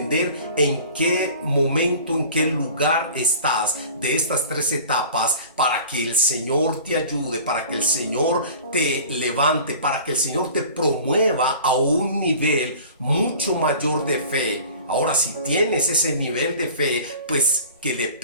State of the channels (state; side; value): inverted; both; correlation -0.43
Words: en qué momento, en qué lugar estás de estas 3 etapas, para que el Señor te ayude, para que el Señor te levante, para que el Señor te promueva a un nivel mucho mayor de fe. Ahora, si tienes ese nivel de fe, pues que le